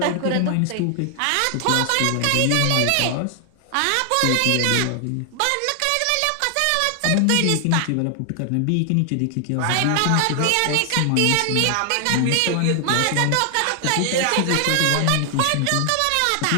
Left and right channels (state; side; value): different; both; correlation 0.00